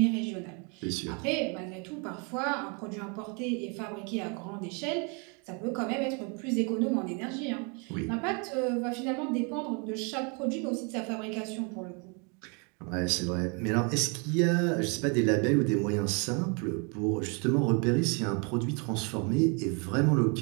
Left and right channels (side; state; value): left; quieter; 34.4 dB